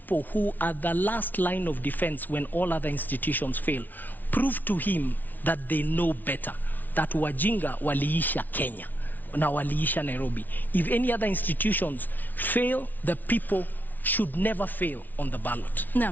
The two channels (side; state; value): right; late; 0.083 ms